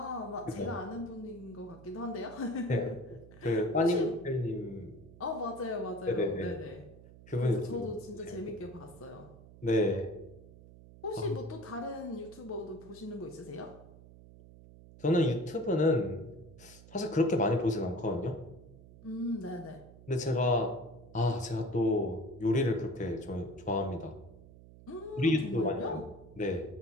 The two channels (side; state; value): right; noise; hum, 19 dB below the sound